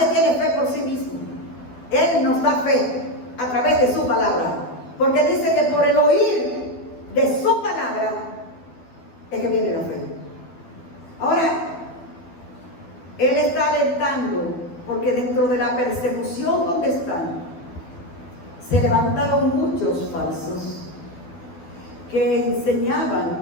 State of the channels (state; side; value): late; right; 12 ms